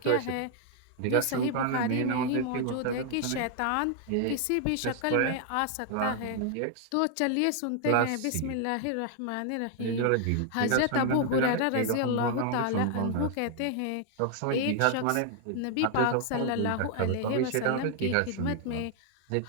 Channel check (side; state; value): both; different; correlation 0.00